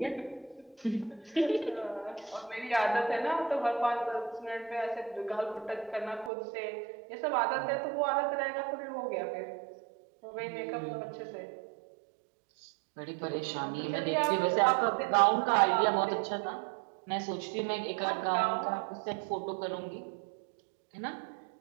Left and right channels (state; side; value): drops out; left; at 6.3 s